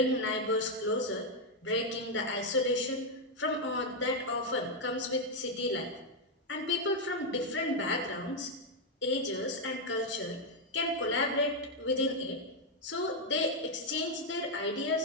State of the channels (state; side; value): normal; both; correlation 0.01